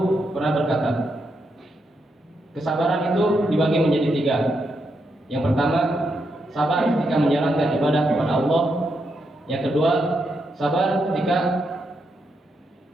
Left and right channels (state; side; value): normal; both; correlation 0.82